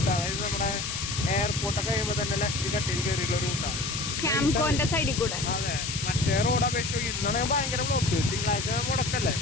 അതായത് നമ്മുടെ എയർപോർട്ടൊക്കെ കഴിയുമ്പോൾ തന്നെ ലെഫ്റ്റ് കട്ടിൽ കയറിയുള്ള റൂട്ടാണ്. ക്യാംകോന്റെ സൈഡിൽ കൂടെ. അതെ, മറ്റേ റോഡ് അപേക്ഷിച്ച് ഇന്നാണ് ഭയങ്കര ബ്ലോക്ക്. തിങ്കളാഴ്ച മുടക്കല്ലേ,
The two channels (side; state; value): left; noise; hiss, 4 dB below the sound